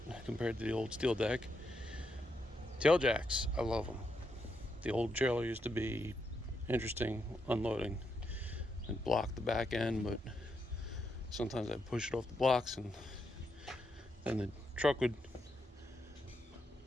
compared to the old steel deck. Tail jacks, I love them. The old trailer used to be interesting unloading and block the back end, but sometimes I'd push it off the blocks and then the truck would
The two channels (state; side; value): normal; both; correlation 0.81